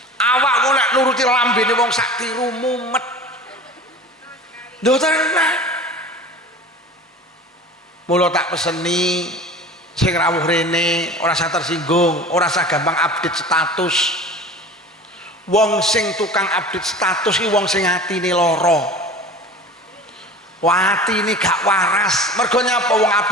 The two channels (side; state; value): both; normal; correlation 0.38